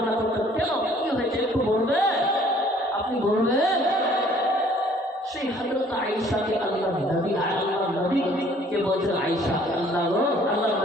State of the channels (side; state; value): both; normal; correlation 0.57